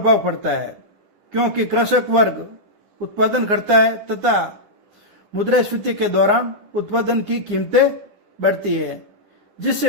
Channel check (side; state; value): left; late; 9.8 ms